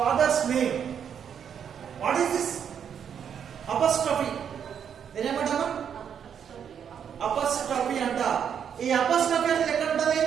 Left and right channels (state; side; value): quieter; left; 8.1 dB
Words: name. What is this? Apostrophe. నేనేమంటాను? అపస్ట్రఫీ అంట. ఈ అపస్ట్రఫీ అనేది ఎక్కడ ఉంటుంది?